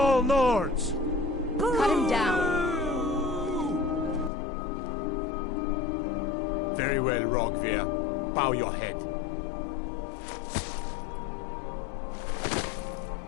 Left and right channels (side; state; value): right; drops out; at 4.3 s